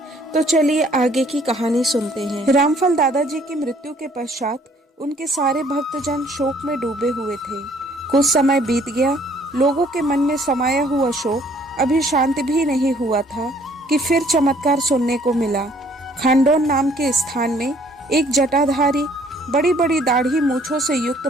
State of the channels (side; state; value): both; normal; correlation 0.60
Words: तो चलिए आगे की कहानी सुनते हैं। रामफल दादाजी की मृत्यु के पश्चात उनके सारे भक्तजन शोक में डूबे हुए थे। कुछ समय बीत गया, लोगों के मन में समाया हुआ शोक अभी शांत भी नहीं हुआ था कि फिर चमत्कार सुनने को मिला। खांडोन नाम के स्थान में एक जटाधारी, बड़ी बड़ी दाढ़ी मूछों से युक्त